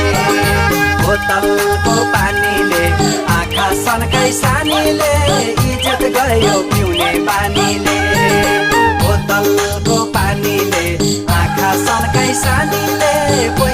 बोतलको पानीले आँखा सनकाई सानीले इज्जत गयो पिउने बानीले बोतलको पानीले आँखा सनकाई सानीले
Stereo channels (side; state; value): both; identical; correlation 1.00